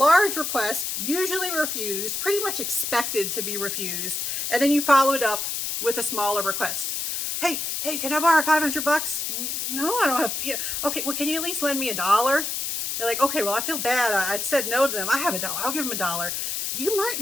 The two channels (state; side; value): noise; left; hiss, 2 dB below the sound